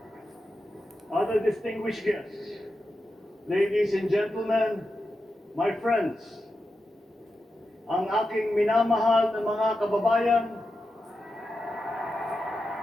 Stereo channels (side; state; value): both; normal; correlation 0.89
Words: Other distinguished guests, ladies and gentlemen, my friends, ang aking minamahal na mga kababayan,